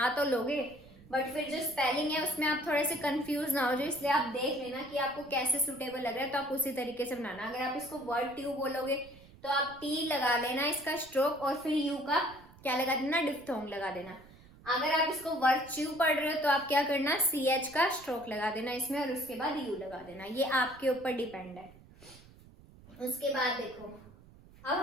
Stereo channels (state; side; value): noise; right; rumble, 23 dB below the sound